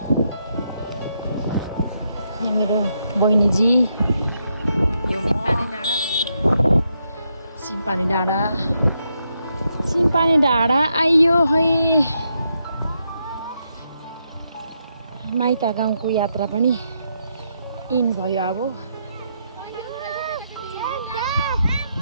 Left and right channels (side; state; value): both; inverted; correlation -0.80